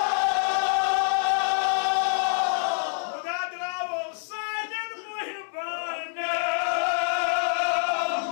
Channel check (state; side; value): silent; right; 61 dB below the other